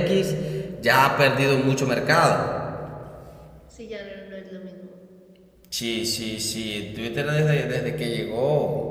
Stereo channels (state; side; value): identical; both; correlation 1.00